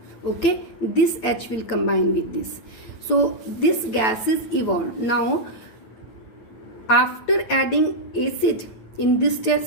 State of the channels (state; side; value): late; right; 9.0 ms